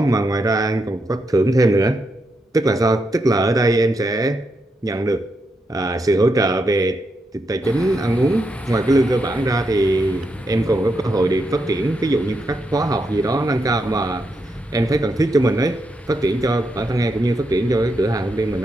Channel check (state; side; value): normal; both; correlation 0.82